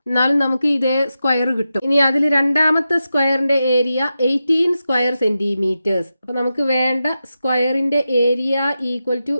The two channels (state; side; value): inverted; both; correlation -0.90